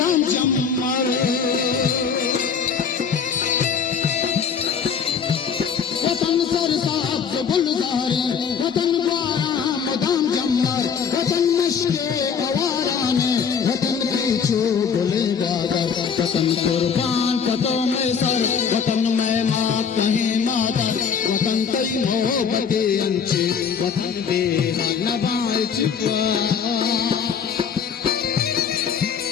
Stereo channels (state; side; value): quieter; right; 6.6 dB